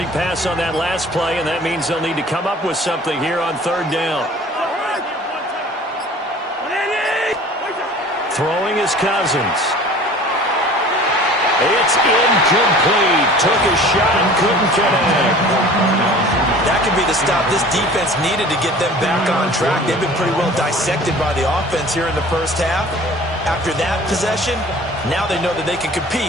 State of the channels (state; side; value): normal; both; correlation 0.45